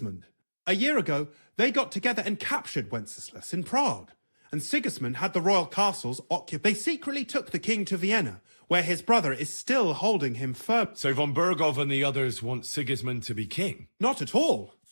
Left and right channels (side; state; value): both; inverted; correlation -1.00